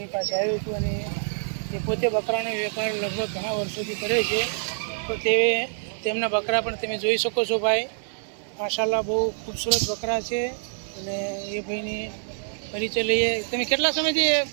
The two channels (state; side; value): silent; left; digital silence